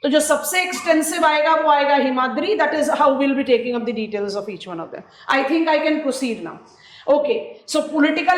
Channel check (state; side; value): identical; both; correlation 1.00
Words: तो जो सबसे एक्सटेंसिव आएगा वो आएगा Himadri. That is how will be taking up the details of each one of them. I think I can proceed now. Okay, so